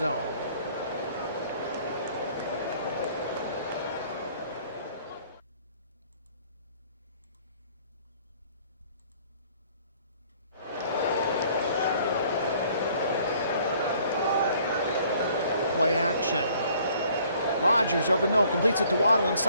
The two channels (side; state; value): both; inverted; correlation -0.59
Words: Play action. Rodgers over the middle, completes it to Waddle